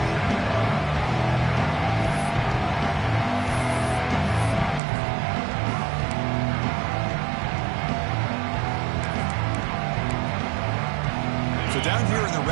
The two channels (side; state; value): left; drops out; at 4.8 s